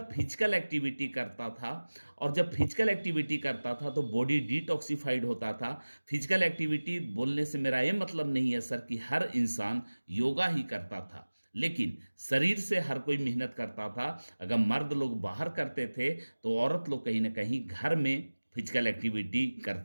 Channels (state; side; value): inverted; both; correlation -1.00